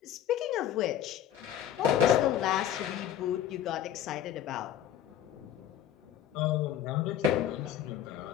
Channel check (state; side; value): quieter; right; 10.3 dB